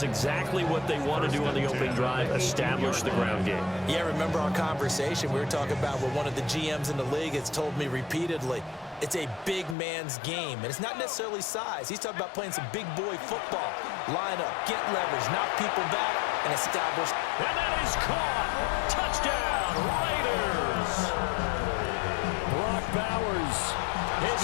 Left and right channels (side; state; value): right; drops out; at 9.8 s